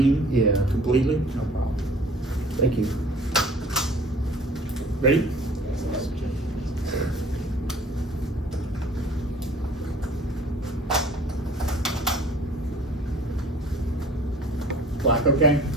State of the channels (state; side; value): normal; both; correlation 0.50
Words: Yeah, completely? No problem. thank you. Ready? Black okay?